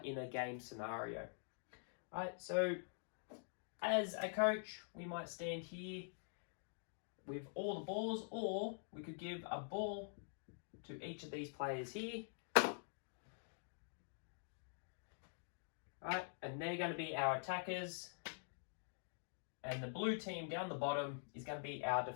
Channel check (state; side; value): silent; right; digital silence